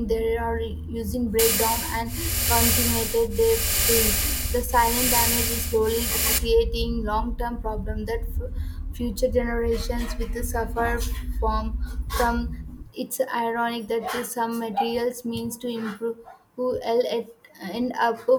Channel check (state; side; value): identical; both; correlation 1.00